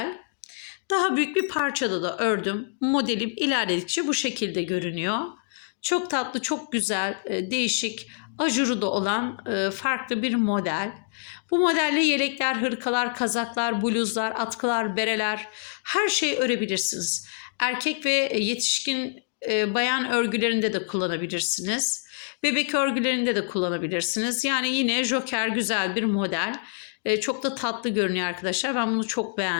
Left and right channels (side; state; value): right; silent; digital silence